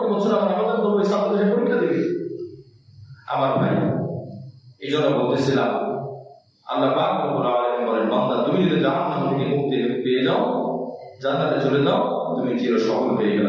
বছর আমরা আবেদন করবো ছাত্র সে পরীক্ষা দেবে। আমার ভাই, এই জন্য বলতেছিলাম আল্লাহ পাক রব্বুল আলামিন বলেন, বান্দা তুমি যদি জাহান্নাম থেকে মুক্তি পেয়ে যাও, জান্নাতে চলে যাও, তুমি চির সফল হয়ে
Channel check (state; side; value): identical; both; correlation 1.00